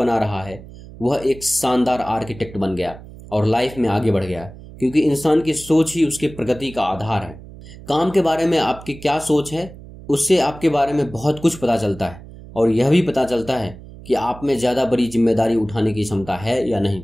रहा है, वह एक शानदार आर्किटेक्ट बन गया और लाइफ में आगे बढ़ गया, क्योंकि इंसान की सोच ही उसकी प्रगति का आधार है। काम के बारे में आपकी क्या सोच है, उससे आपके बारे में बहुत कुछ पता चलता है, और यह भी पता चलता है कि आप में ज़्यादा बड़ी जिम्मेदारी उठाने की क्षमता है या नहीं।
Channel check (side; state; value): right; noise; hum, 17 dB below the sound